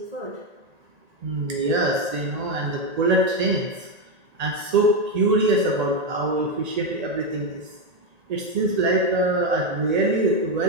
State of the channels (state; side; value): late; left; 1.9 ms